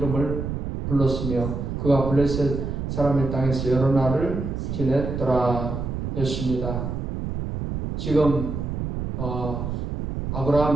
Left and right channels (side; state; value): right; noise; rumble, 4 dB below the sound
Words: 불렀으며 그가 블레셋 사람의 땅에서 여러 날을 지냈더라 했습니다. 지금